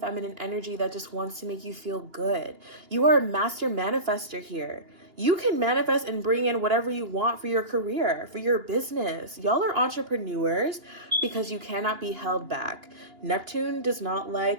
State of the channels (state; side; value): late; left; 2.8 ms